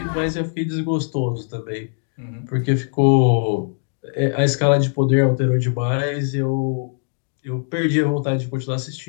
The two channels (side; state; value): right; silent; 63 dB below the other